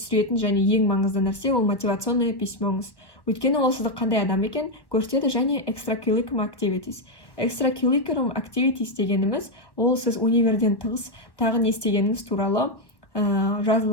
және ең маңызды нәрсе ол мотивационный письмоңыз. Өйткені ол сізді қандай адам екен көрсетеді. Және extracurriculum activities. Extracurriculum activities дегеніміз ол сіз универден тығыз тағы не істегеніңіз туралы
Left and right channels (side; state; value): right; late; 1.1 ms